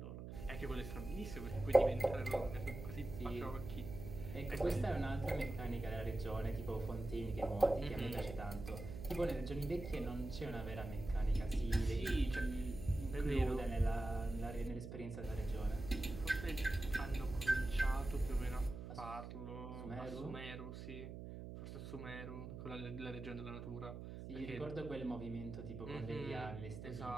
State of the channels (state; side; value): noise; right; hum, 9 dB below the sound